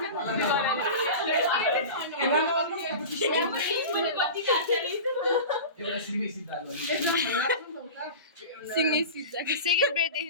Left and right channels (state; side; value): inverted; both; correlation -0.31